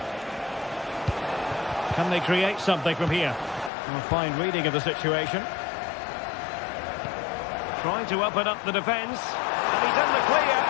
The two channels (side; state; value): right; drops out; at 3.7 s